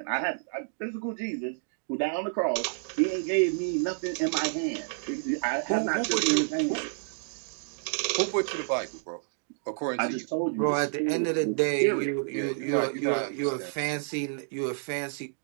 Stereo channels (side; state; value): left; silent; digital silence